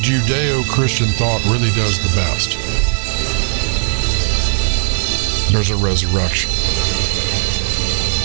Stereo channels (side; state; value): left; silent; 63 dB below the other